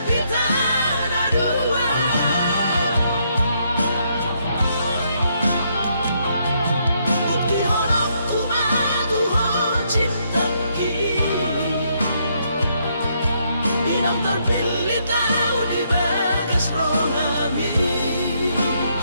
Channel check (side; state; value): both; inverted; correlation -0.74